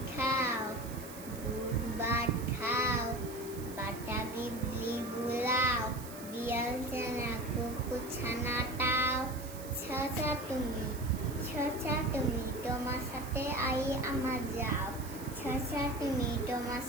খাও, দুধ ভাত খাও, বাটা বিবলি বুলাও, বিয়াল ছানা কুকুর ছানাটাও। ছচা তুমি তোমার সাথে আই আমার যাও, ছচা তুমি তোমার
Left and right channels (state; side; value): noise; right; hiss, 15 dB below the sound